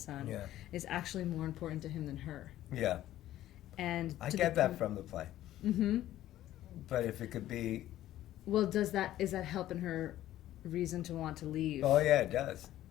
is actually more important to him than her. Yeah. And I get that from the play. But if it could be... Well, is that helping her reason to want to leave? Oh, yeah, it does.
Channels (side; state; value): right; quieter; 13.6 dB